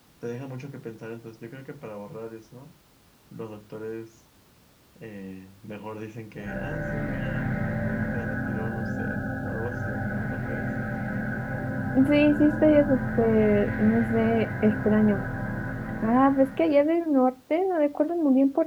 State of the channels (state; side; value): identical; both; correlation 1.00